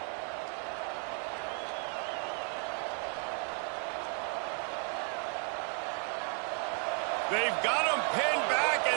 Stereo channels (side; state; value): left; quieter; 38.6 dB